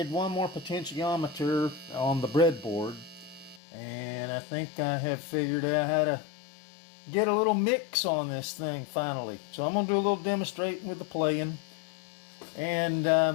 one more potentiometer on the breadboard, and I think I have figured out how to get a little mix on this thing finally. So I'm going to do a little demonstrating with the playing. And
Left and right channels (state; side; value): drops out; right; at 3.6 s